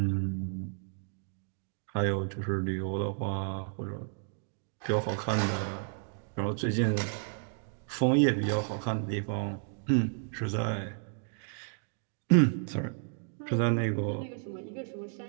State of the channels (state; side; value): silent; left; 56 dB below the other